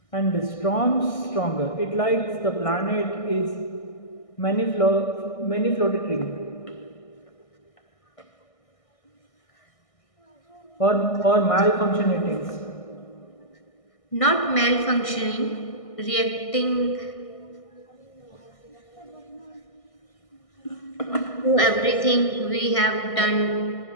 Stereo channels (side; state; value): right; late; 1.6 ms